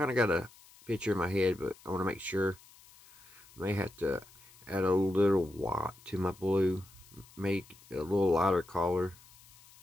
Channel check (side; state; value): left; noise; hiss, 24 dB below the sound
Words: of got a picture in my head, but I want to make sure. I may have to add a little white to my blue, make a little lighter color,